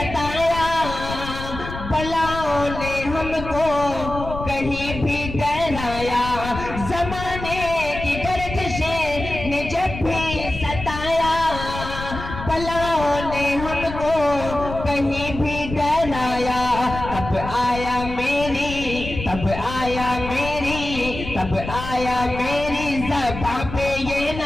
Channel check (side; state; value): left; noise; rumble, 9 dB below the sound